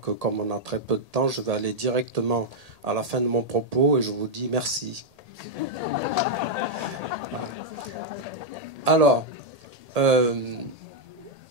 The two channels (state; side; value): late; left; 1.8 ms